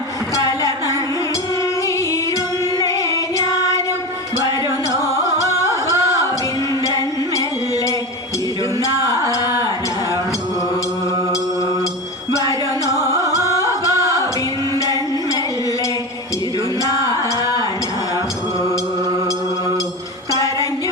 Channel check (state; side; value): normal; both; correlation 0.24